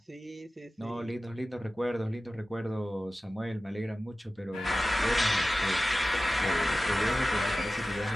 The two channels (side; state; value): both; normal; correlation 0.95